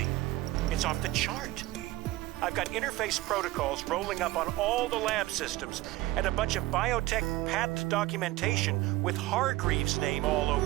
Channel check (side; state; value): left; quieter; 17.8 dB